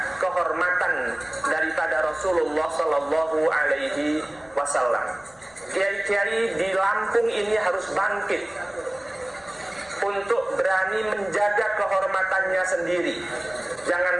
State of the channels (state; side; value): noise; left; rumble, 29 dB below the sound